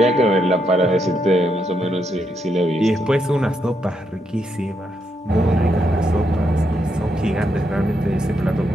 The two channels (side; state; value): both; normal; correlation 0.79